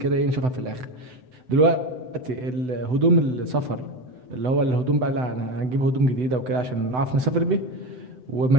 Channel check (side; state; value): left; late; 7.9 ms